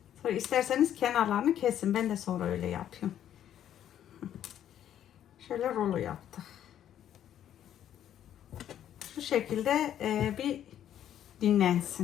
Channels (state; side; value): quieter; right; 10.6 dB